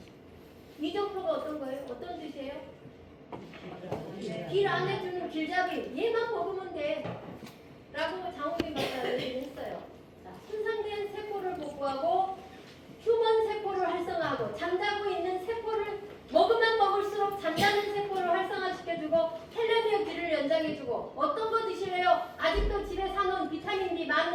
이정표가 어떤 거예요? 어떤 뜻이에요? 길 안에 주는 길잡이 얘만 먹으면 돼 라고 장호빈 박사는 얘기했어요. 자, 손상된 세포를 복구하고 휴먼 세포를 활성화하고 잠자고 있는 세포를 먹으면 먹을수록 잠자는 세포를 활성화시켜주고 텔레미어 길을 연장해주고 어떤 거 드실래요? 아직도 집에 사놓은 비타민 B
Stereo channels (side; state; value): both; identical; correlation 1.00